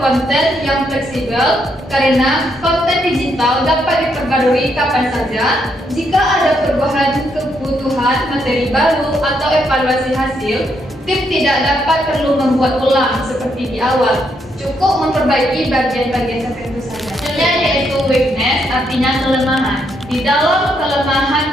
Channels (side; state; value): both; normal; correlation 0.76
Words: yang fleksibel karena konten digital dapat diperbarui kapan saja. Jika ada perubahan kebutuhan materi baru atau evaluasi hasil, tim tidak dapat perlu membuat ulang seperti di awal. Cukup memperbaiki bagian-bagian tertentu saja. Selanjutnya yaitu weakness, artinya kelemahan. Di dalam